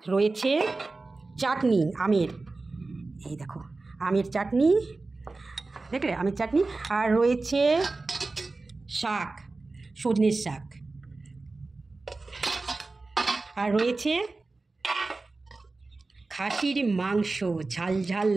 রয়েছে চাটনি আমের, এই দেখো আমের চাটনি, দেখলে আমের চাটনি। আর রয়েছে শাক, সজনের শাক। আর রয়েছে খাসির মাংস, ঝাল ঝাল,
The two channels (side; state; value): left; quieter; 3.5 dB